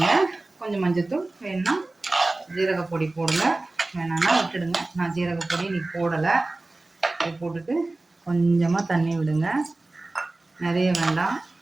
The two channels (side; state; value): left; quieter; 3.0 dB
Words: கொஞ்சம் மஞ்சத்தூள் வேணும்னா ஜீரகப்பொடி போடுங்க, வேணான்னா விட்டுடுங்க. நான் ஜீரகப்பொடி இன்றைக்கி போடலை. இது போட்டுட்டு கொஞ்சமாக தண்ணி விடுங்க, நிறைய வேண்டாம்.